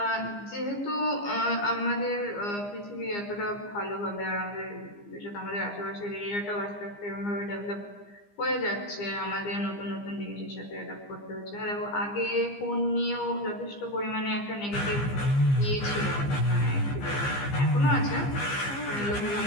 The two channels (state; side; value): late; right; 15 ms